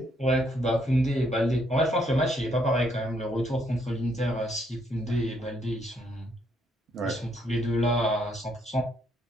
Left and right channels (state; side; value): normal; both; correlation 0.72